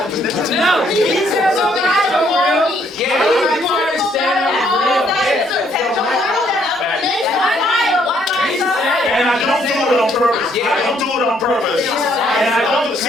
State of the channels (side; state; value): both; normal; correlation 0.68